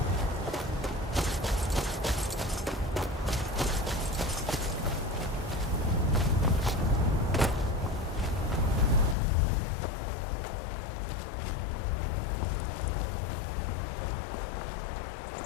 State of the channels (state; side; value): drops out; right; at 9.2 s